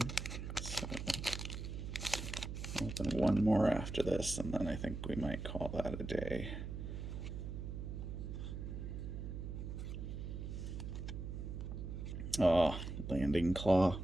So I'll open one more after this, and then I think we might call that a day. Oh, Landing Claw.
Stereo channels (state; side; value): noise; right; hum, 6 dB below the sound